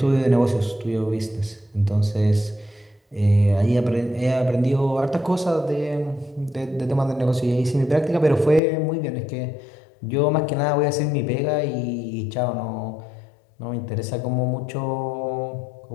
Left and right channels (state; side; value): drops out; right; at 8.6 s